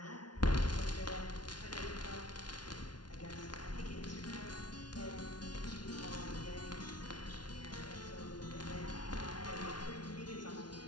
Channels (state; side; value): late; right; 0.70 ms